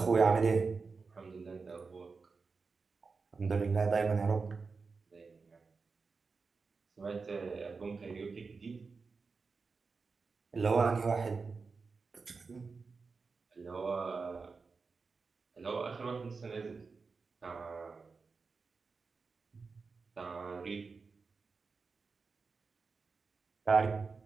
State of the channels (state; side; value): quieter; left; 4.6 dB